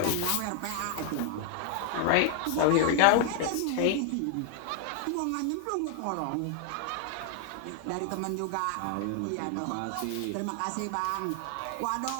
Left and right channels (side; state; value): both; different; correlation 0.00